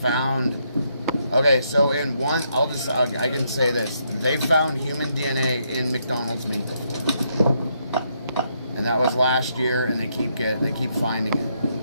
Okay, so in one, I can say this. They found human DNA in McDonald's meat before, and that was last year. And they keep finding it.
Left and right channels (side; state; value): both; inverted; correlation -0.76